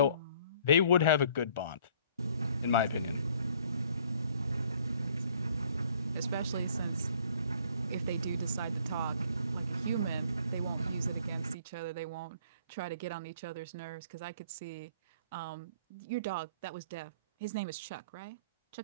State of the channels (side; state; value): both; inverted; correlation -0.58